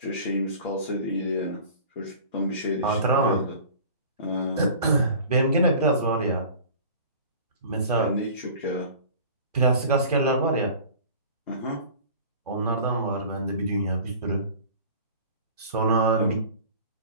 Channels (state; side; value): inverted; both; correlation -0.42